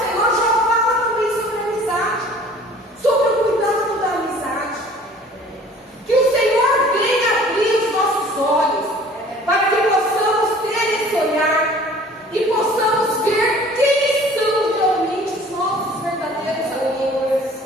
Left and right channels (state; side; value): normal; both; correlation 0.49